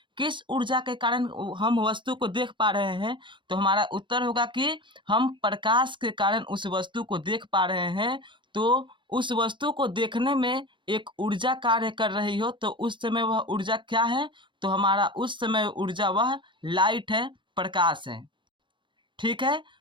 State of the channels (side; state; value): left; late; 0.23 ms